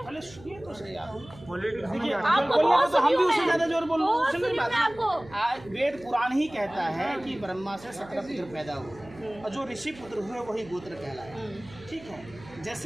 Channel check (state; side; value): noise; right; hum, 20 dB below the sound